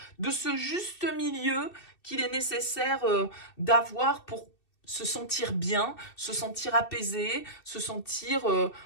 de ce juste milieu qu'il est nécessaire d'avoir pour se sentir bien, se sentir apaisé, se sentir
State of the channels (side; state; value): right; late; 2.6 ms